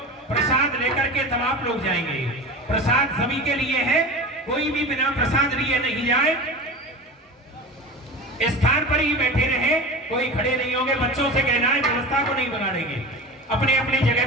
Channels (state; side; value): normal; both; correlation 0.30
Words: प्रसाद लेकर के तब आप लोग जाएंगे। प्रसाद सभी के लिए है, कोई भी बिना प्रसाद लिए नहीं जाए। स्थान पर ही बैठे रहे, कोई खड़े नहीं होंगे। बच्चों से कहना है व्यवस्था को नहीं बिगाड़ेंगे, अपने अपनी जगह